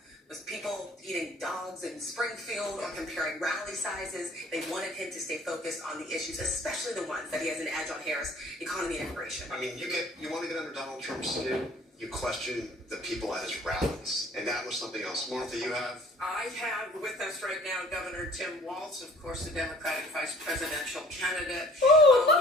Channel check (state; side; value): normal; both; correlation 0.52